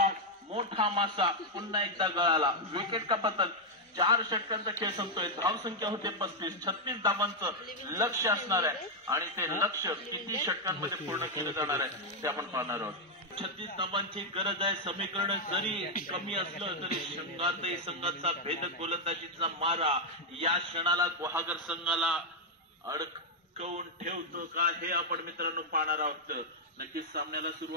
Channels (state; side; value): normal; both; correlation -0.02